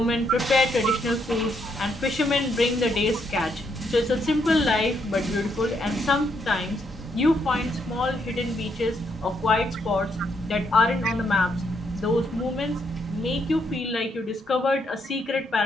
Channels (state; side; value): normal; both; correlation 0.76